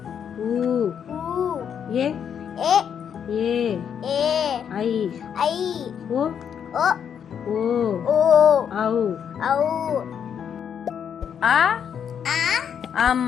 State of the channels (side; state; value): right; quieter; 8.1 dB